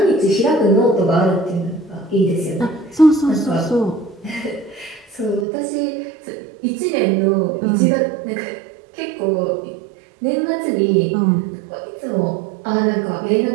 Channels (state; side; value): drops out; left; at 5.5 s